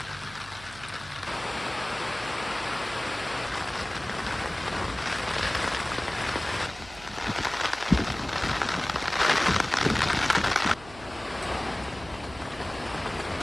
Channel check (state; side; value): noise; right; hum, 19 dB below the sound